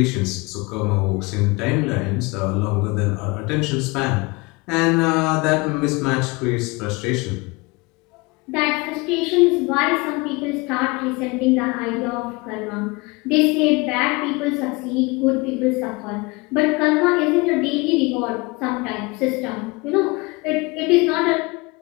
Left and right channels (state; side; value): quieter; right; 25.7 dB